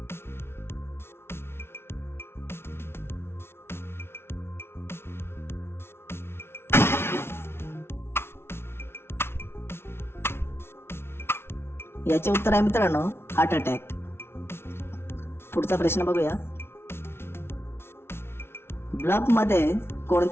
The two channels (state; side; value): late; right; 0.12 ms